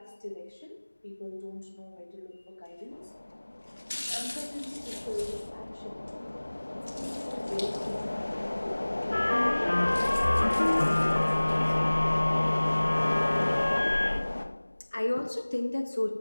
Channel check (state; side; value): inverted; both; correlation -1.00